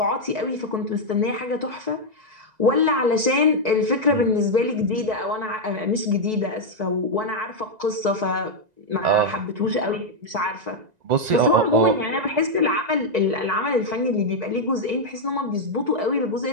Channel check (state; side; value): late; left; 1.9 ms